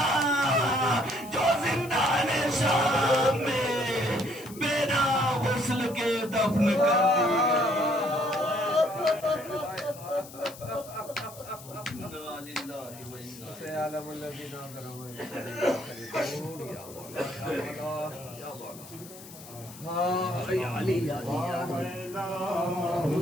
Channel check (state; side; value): noise; left; hiss, 17 dB below the sound